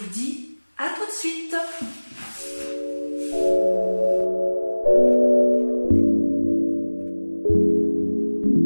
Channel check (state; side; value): inverted; both; correlation -1.00